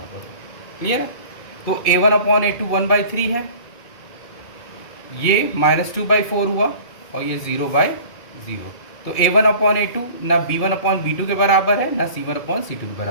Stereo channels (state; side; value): late; right; 2.3 ms